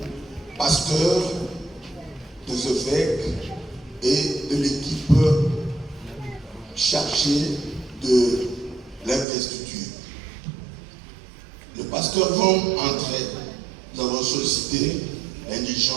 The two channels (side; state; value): left; drops out; at 9.2 s